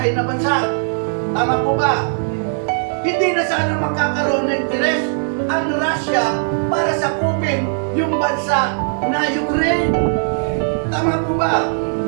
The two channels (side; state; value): left; silent; digital silence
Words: na bansa. Tama po ba? Hindi na sana magkakaroon ng interest ang Russia para sakupin yung bansa na Ukraine. Tama po ba?